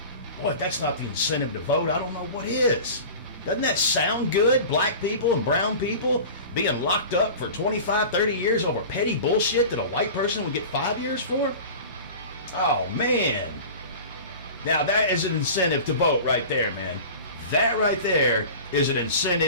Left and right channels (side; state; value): both; inverted; correlation -0.36